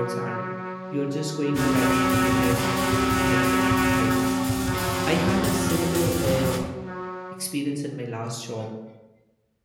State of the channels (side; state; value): both; identical; correlation 1.00